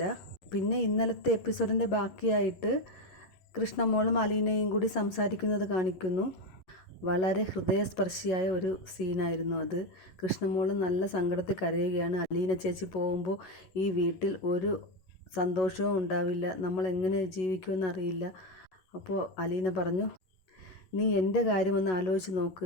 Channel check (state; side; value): late; right; 11 ms